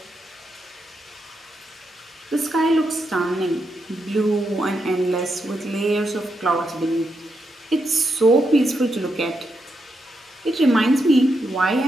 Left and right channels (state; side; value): normal; both; correlation 0.83